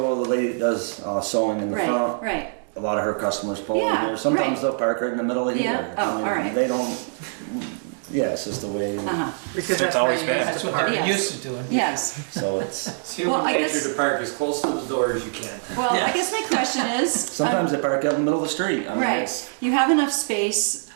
the lady does sewing in the Right, front. right. A lot of her customers pull in Yeah, here. Sometimes right. they'll park right in the middle of Yeah? here. Oh, I mean, all right. They don't. Yeah, it's just the way. Uh-huh, because that's how you used That's to what park. they're Yes. used to doing. yes. So it's. Well, I guess, to park as close to the door as you can. well, I guess my question is. Sometimes they park out in the middle of the street. I mean, Right, it's- you have enough space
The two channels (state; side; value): silent; left; digital silence